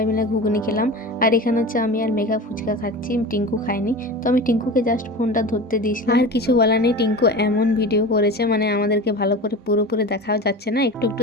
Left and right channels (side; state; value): both; normal; correlation 0.31